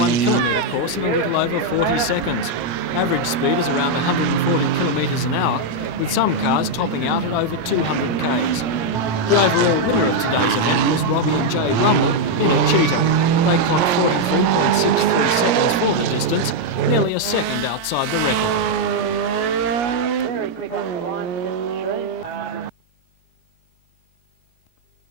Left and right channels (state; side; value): late; right; 17 ms